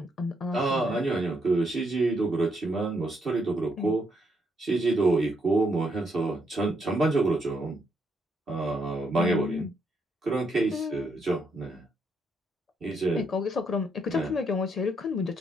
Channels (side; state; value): both; normal; correlation 0.76